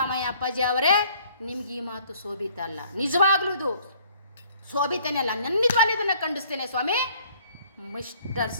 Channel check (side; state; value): both; inverted; correlation -0.59